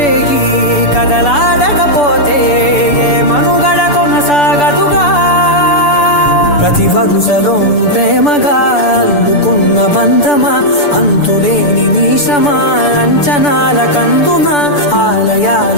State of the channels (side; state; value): right; late; 6.9 ms